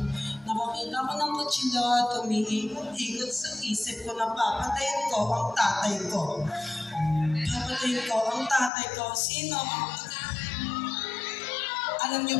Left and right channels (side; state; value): right; drops out; at 8.7 s